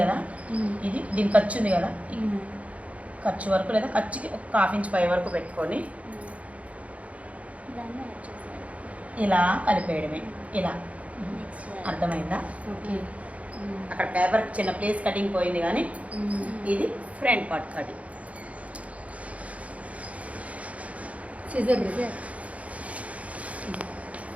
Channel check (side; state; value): left; late; 0.066 ms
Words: కదా, ఇది దీని ఖర్చు ఉంది కదా, ఈ ఖర్చు వరకు లేదా ఖర్చుకి ఒక 1/2 ఇంచ్ పై వరకు పెట్టుకొని ఇలా కలిపేయడమే. ఇలా అర్థమైందా? అక్కడ పేపర్ చిన్న ప్లేస్ కటింగ్ పోయింది కానీ ఇది ఫ్రంట్ పార్ట్ కటింగ్.